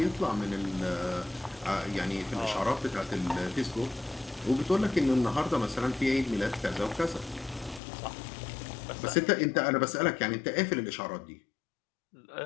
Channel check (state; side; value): drops out; right; at 7.8 s